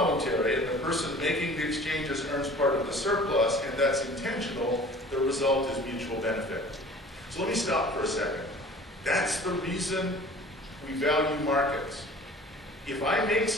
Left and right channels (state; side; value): normal; both; correlation 0.45